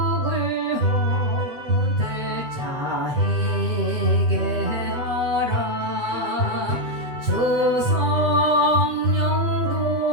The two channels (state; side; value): late; left; 7.2 ms